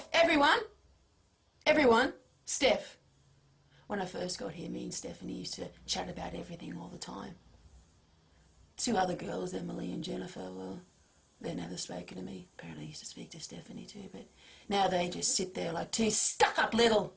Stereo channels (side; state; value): both; identical; correlation 1.00